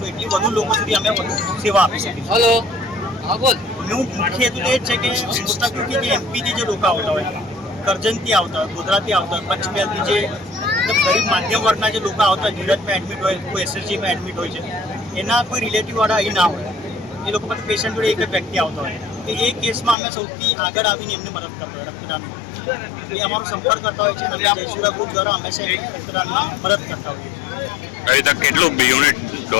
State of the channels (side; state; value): right; drops out; at 20.0 s